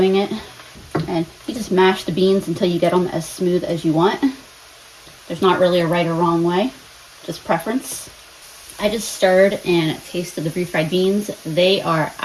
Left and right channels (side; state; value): both; identical; correlation 1.00